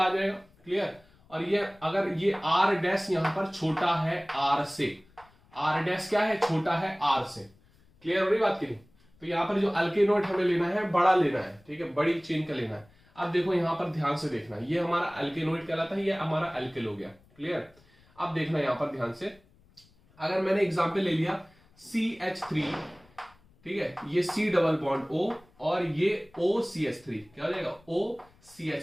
आ जाएगा। क्लियर। और ये अगर ये आर डैश यहां पर छोटा है आर से, आर डैश क्या है, छोटा है आर से। क्लियर हो रही बात की नहीं। तो यहां पर जो एल्केनोएट हमें लेना है बड़ा लेना है, ठीक है, बड़ी चेन का लेना है। अब देखो यहां पर ध्यान से देखना, ये हमारा एल्केनोएट कहलाता है, ये हमारा एल्किल हो गया। क्लियर। अब देखना यहां पर ध्यान से, अगर मैंने एग्जांपल ले लिया CH3, ठीक है, ये C डबल बॉन्ड O और ये OCH3, क्या हो जाएगा,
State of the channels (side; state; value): left; noise; rumble, 30 dB below the sound